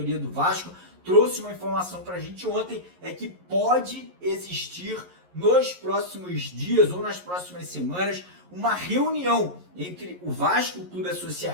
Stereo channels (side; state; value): left; late; 11 ms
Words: do Vasco, trouxe uma informação para a gente ontem, é que pode existir nos próximos dias ou nas próximas semanas uma reunião entre o Vasco, o Clube